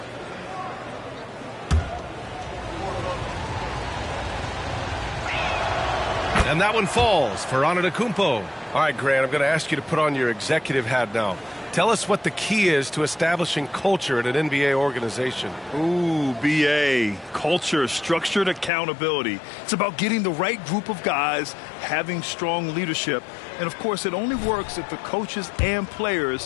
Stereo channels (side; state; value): right; drops out; at 18.7 s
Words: And that one falls for Antetokounmpo. All right, Grant, I'm going to ask you to put on your executive hat now. Tell us what the key is to establishing culture at an NBA organization. Ooh, BA. Culture, structured accountability. It's about getting the right group of guys, having strong leadership. And, of course, it only works if the coaches and